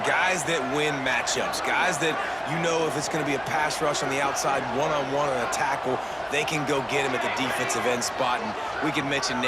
guys that win matchups. Guys that, you know, if it's going to be a pass rush on the outside, one-on-one on a tackle, they can go get him at the defensive end spot. And we can mention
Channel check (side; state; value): both; identical; correlation 1.00